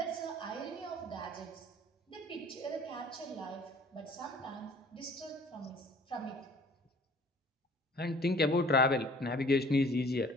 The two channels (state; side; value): normal; both; correlation 0.52